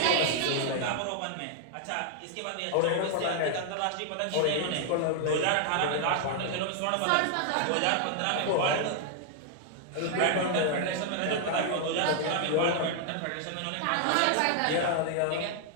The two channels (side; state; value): both; different; correlation 0.00